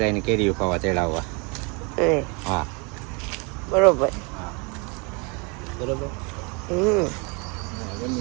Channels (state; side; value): quieter; left; 31.1 dB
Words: કેરીઓ ખાવા તેડાવવા. હા બરોબર હા બરોબર